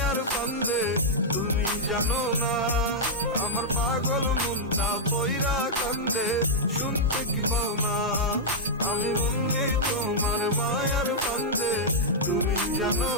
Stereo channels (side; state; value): both; normal; correlation -0.06